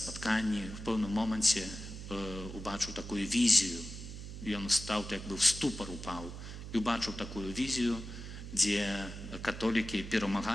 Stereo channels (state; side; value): noise; right; hum, 10 dB below the sound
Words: В пэўным моманце убачыў такую візію. Ён стаў, як бы в ступар упаў, і убачыў такую візію, дзе католікі